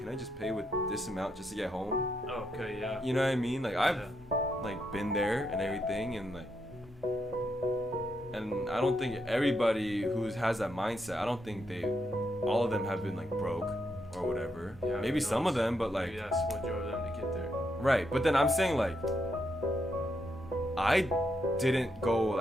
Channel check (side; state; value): both; normal; correlation 0.80